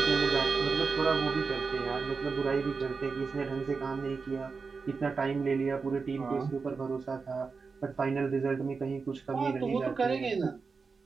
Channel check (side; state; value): left; quieter; 4.8 dB